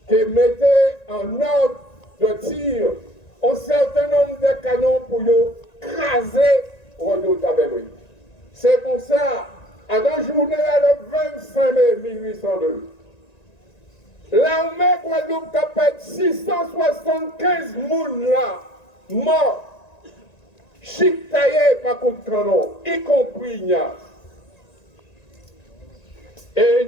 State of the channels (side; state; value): right; late; 1.9 ms